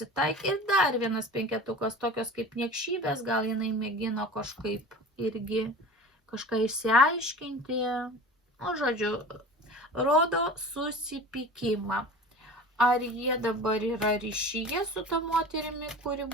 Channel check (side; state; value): both; normal; correlation 0.38